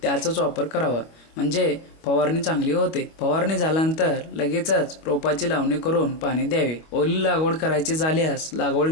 त्याचाच वापर करावा, म्हणजे फवारणी चांगली होते. फवारणी झाल्यानंतर लगेचच रोपाची लावणी करून पाणी द्यावे. ओली लागवड करायची झाल्यास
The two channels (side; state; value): right; late; 25 ms